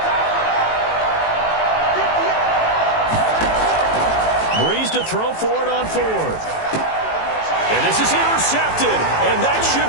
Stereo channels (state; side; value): late; right; 18 ms